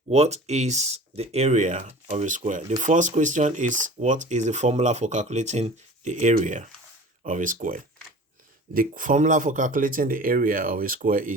What is the area of a square? The first question is, what is the formula for calculating the area of a square? The formula for calculating the area of a square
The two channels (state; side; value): normal; both; correlation 0.41